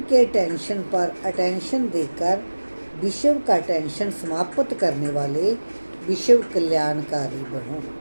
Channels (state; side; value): inverted; both; correlation -1.00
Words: के टेंशन पर अटेंशन देकर विश्व का टेंशन समाप्त करने वाले विश्व कल्याणकारी बनो।